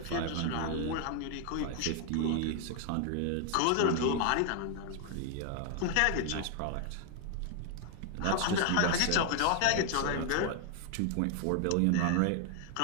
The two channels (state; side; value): different; both; correlation 0.00